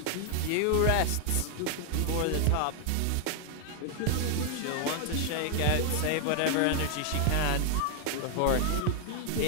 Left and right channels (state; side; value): different; both; correlation 0.00